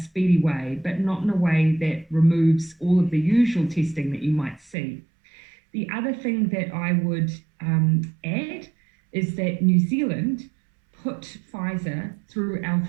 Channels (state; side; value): drops out; left; at 4.8 s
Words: way, but not in a way that removes all of the usual testing that you might see. The other thing that I would add is that New Zealand put Pfizer through our